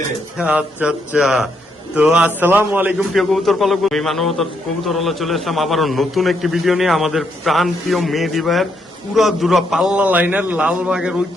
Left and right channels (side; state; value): both; normal; correlation 0.76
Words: আচ্ছা। তো আসসালামু আলাইকুম প্রিয় কবুতর পালক, আমি মানবতার কবুতর হলে চলে আসলাম আবারও নতুন একটি ভিডিও নিয়ে আমাদের প্রাণ প্রিয় মেহেদি ভাইয়ের পুরা পাল্লা লাইনের লালবাগের